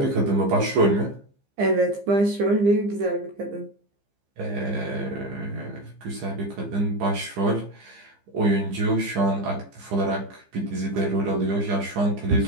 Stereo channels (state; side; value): late; left; 15 ms